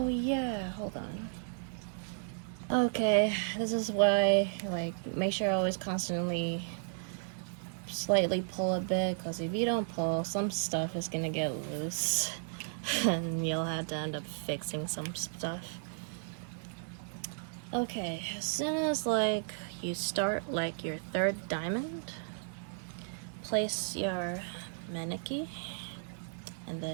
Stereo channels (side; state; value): left; silent; digital silence